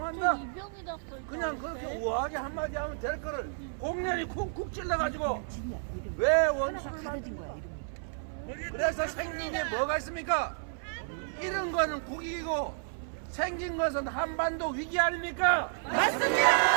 그냥 그렇게 우아하게 한마디 하면 될 거를 공연히 쿡쿡 찔러가지고 왜 원수를 만든 거야? 그래서 생긴 게 뭐가 있습니까? 이런 거는 국익이고 생긴 것은 한반도 위기 아닙니까?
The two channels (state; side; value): silent; left; 57 dB below the other